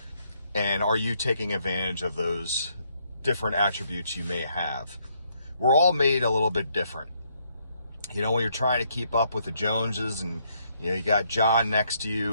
And are you taking advantage of those different attributes you may have? We're all made a little bit different. When you're trying to keep up with the Joneses and, you got John next to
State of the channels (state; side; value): inverted; both; correlation -0.72